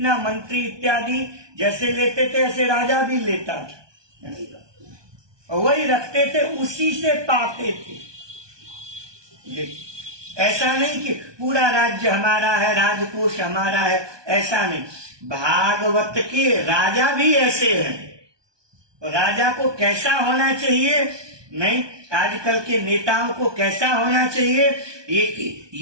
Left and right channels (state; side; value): late; left; 1.2 ms